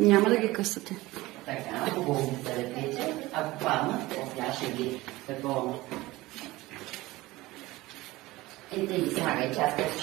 няма да ги късате. Така, хубаво да лепите. Ако паднат, тя ще ги такова. Ето и слагай, че аз късно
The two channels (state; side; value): quieter; left; 19.3 dB